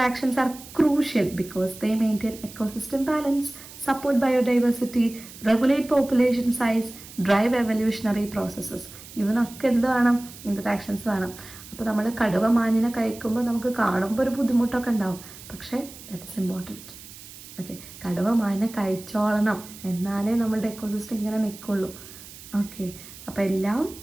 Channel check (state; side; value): noise; right; hiss, 17 dB below the sound